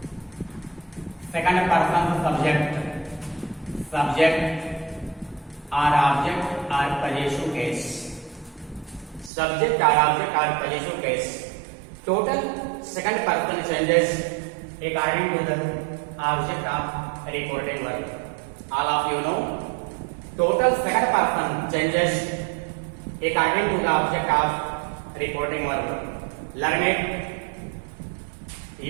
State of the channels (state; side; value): drops out; left; at 9.3 s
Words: second person subject or object or possessive case. Subject or object or possessive case. Total second person changes according to the object of reporting verb. All of you know, total second person changes according to the object of reporting verb. Learn it.